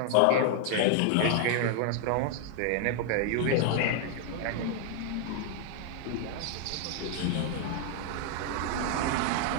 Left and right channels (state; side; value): different; both; correlation 0.00